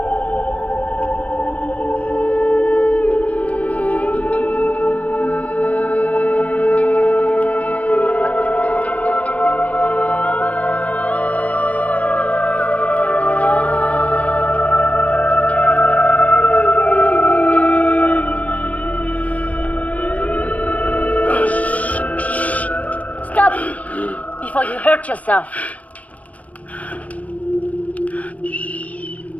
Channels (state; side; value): late; right; 0.069 ms